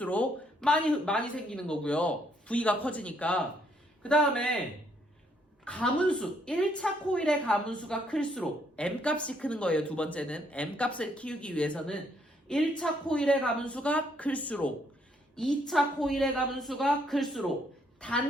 많이 생기는 거고요. V가 커지니까. 그 다음에 가문수, 1차 코일의 가문수가 클수록 M값이 크는 거예요. 두 번째는 M값을 키우기 위해서는 1차 코일의 가문수가 클수록 2차 코일의 가문수가 클수록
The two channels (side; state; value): both; normal; correlation 0.70